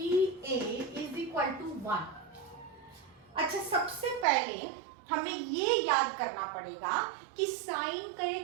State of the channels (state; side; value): drops out; left; at 4.2 s